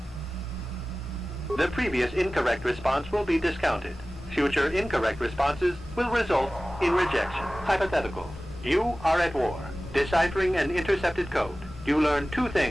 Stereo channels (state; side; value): normal; both; correlation 0.97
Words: The previous incorrect response will be discounted. Future incorrect responses will result in rejection. Hypothetical. You are at war, deciphering an intercepted code. You learn 2